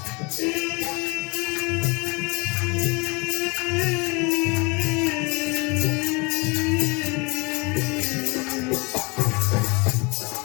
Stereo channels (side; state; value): right; quieter; 28.4 dB